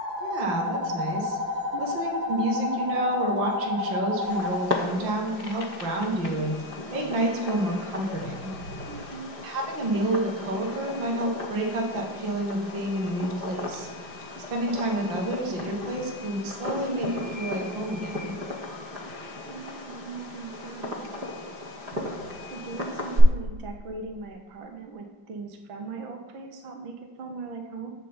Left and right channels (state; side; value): late; left; 5.0 ms